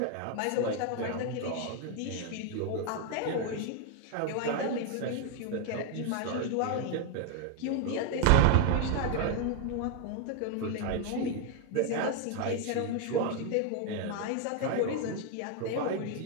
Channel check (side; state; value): both; different; correlation 0.01